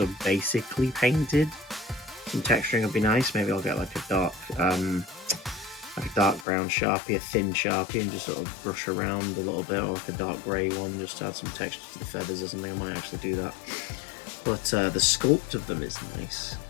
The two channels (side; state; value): right; drops out; at 6.5 s